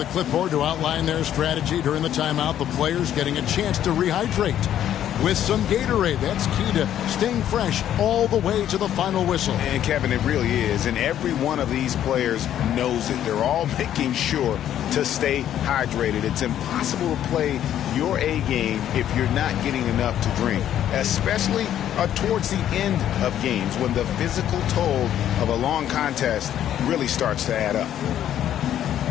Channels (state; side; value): quieter; right; 11.0 dB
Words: clipboard to outline their strategy during the timeout, the players getting a chance to rehydrate with some Gatorade. That's key to staying fresh all the way to the final whistle. And Kevin, it really is. And every one of these players knows it. They're all making sure to stay hydrated. It's impossible to play your A game if you're not getting enough to drink, especially towards the end of games when the physical toll of a long contest really starts to add up.